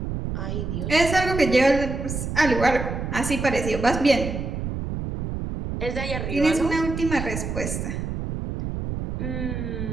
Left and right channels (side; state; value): right; noise; rumble, 4 dB below the sound